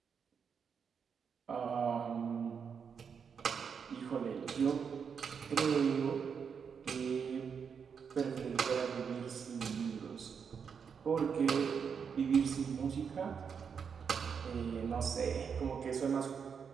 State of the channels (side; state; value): left; quieter; 6.6 dB